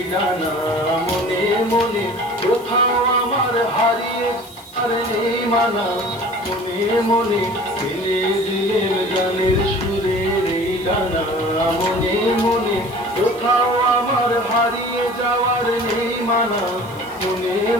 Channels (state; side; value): noise; left; hiss, 23 dB below the sound